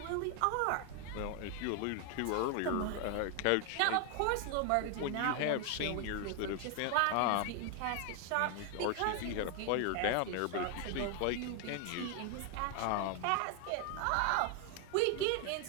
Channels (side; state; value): both; different; correlation 0.01